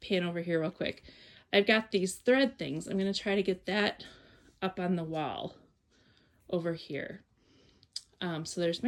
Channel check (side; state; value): both; identical; correlation 1.00